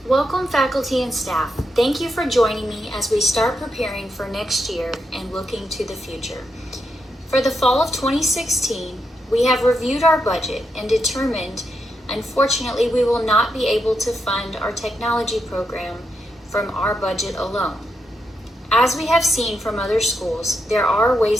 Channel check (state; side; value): normal; both; correlation 0.83